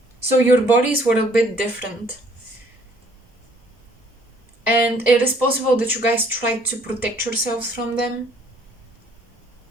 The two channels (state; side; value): normal; both; correlation 0.60